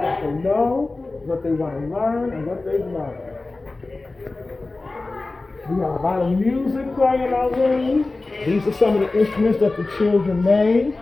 what they know, what they want to learn, and what they've learned. We have a lot of music playing in our room. These are some of the instruments that the children made.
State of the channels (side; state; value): right; quieter; 3.3 dB